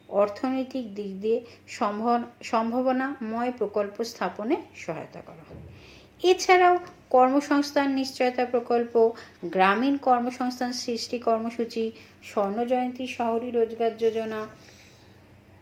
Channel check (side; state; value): both; identical; correlation 1.00